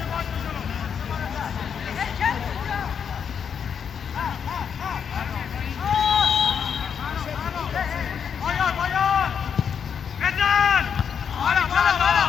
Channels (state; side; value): quieter; right; 7.3 dB